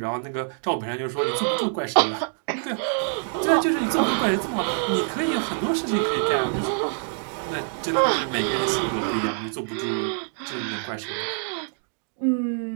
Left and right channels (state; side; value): silent; left; digital silence